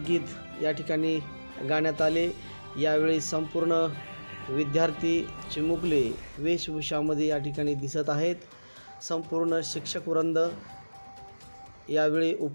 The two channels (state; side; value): inverted; both; correlation -1.00